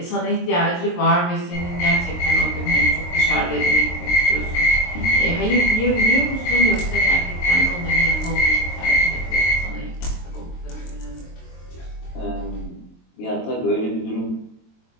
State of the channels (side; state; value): right; late; 23 ms